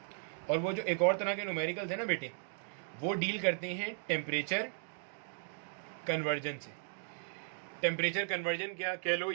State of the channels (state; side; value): silent; left; digital silence